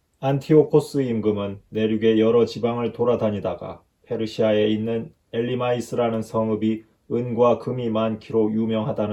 안티오코스 임금은 내륙의 여러 지방을 돌아다니다가 페르시아에 있는 엘리마이스라는 성읍이 은과 금이 많기로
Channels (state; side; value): identical; both; correlation 1.00